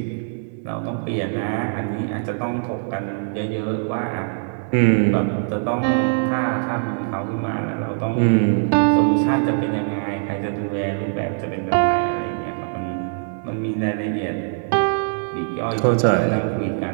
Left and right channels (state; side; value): silent; left; 64 dB below the other